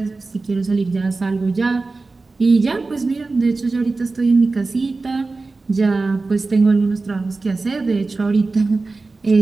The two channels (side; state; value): left; quieter; 3.7 dB